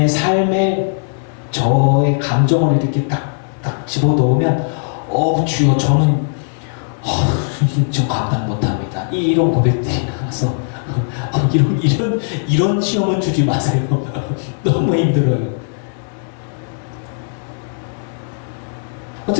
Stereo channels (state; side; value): silent; right; digital silence